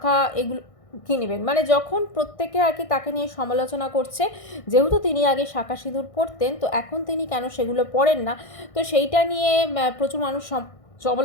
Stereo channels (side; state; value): right; late; 1.6 ms